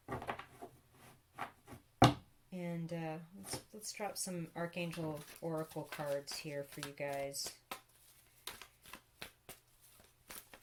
And let's drop some Archangel Oracle cards here for you guys.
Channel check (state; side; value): identical; both; correlation 1.00